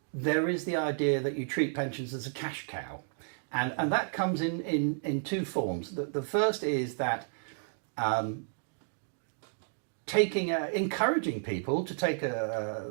there is the idea that you treat pensions as a cash cow, and that comes in two forms. The first is that encouraging people to take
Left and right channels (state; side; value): silent; left; digital silence